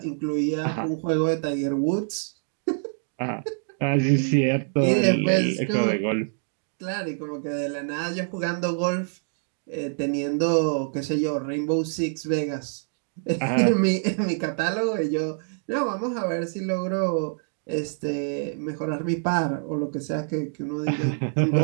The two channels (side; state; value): left; silent; digital silence